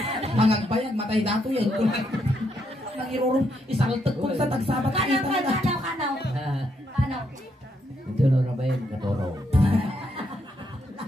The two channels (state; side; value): normal; both; correlation 0.76